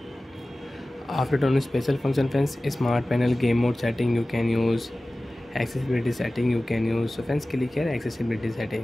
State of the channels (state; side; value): normal; both; correlation 0.97